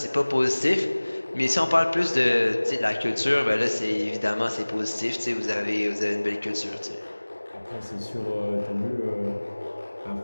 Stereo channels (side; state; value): both; inverted; correlation -1.00